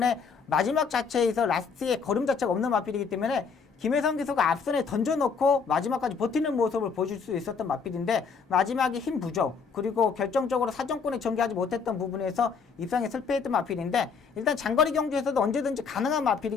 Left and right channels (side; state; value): right; quieter; 5.6 dB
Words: 마지막 자체에서 라스트에 걸음 자체가 없는 마필이기 때문에 김혜성 기수가 앞선에 던져놓고 마지막까지 버티는 모습을 보여줄 수 있었던 마필인데 마지막에 힘 부족 그리고 결정적으로 사정권에 전개하지 못했던 부분에서 입상에 실패했던 마필인데, 일단 장거리 경주에서도 언제든지 가능한